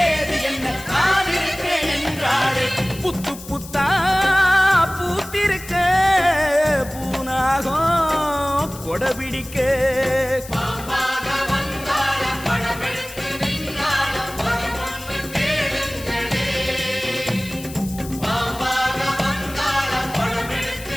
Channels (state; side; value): noise; left; hiss, 15 dB below the sound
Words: என்ன நான் இருக்கேன் என்றாளே புத்து புத்தா பூத்திருக்க பூனாகம் கொடபிடிக்க பாம்பாக வந்தாள படமெடுத்து நின்னாள வரமொன்று கேளுங்களே